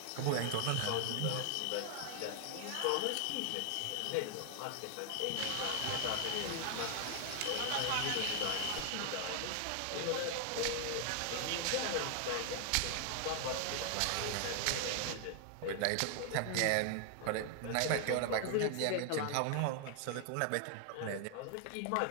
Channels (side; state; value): both; different; correlation 0.00